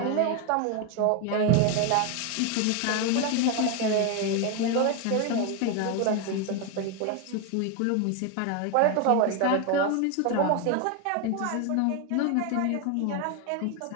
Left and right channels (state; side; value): different; both; correlation 0.01